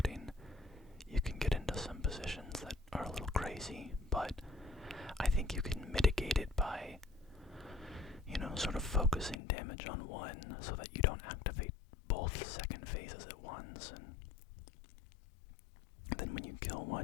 you can get into some positions that are a little crazy, but I think you can mitigate it by, sort of focusing damage on one so that you don't activate both second phases at once, and then when you kill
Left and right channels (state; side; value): drops out; right; at 9.3 s